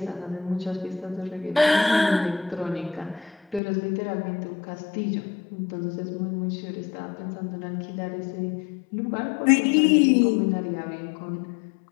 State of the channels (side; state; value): right; drops out; at 3.6 s